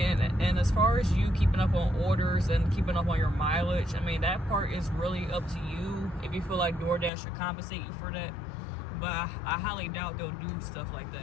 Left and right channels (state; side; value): drops out; right; at 7.1 s